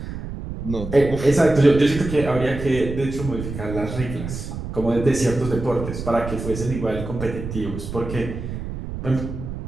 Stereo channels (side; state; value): right; noise; rumble, 8 dB below the sound